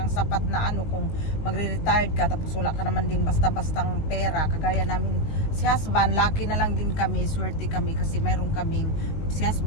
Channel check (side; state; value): right; late; 19 ms